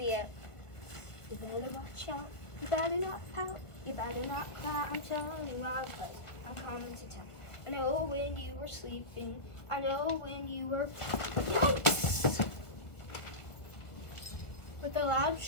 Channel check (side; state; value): right; late; 1.4 ms